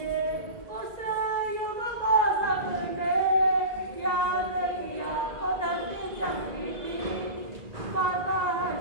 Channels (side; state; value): left; late; 1.9 ms